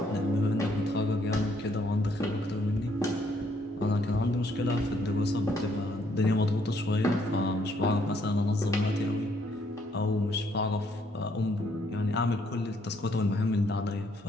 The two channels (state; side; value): normal; both; correlation 0.69